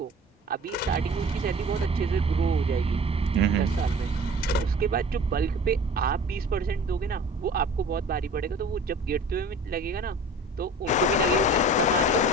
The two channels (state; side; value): normal; both; correlation 0.42